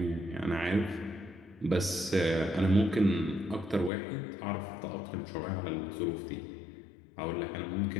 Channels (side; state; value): right; drops out; at 3.9 s